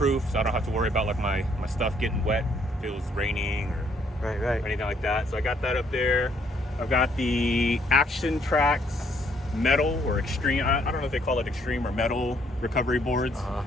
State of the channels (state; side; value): normal; both; correlation 0.67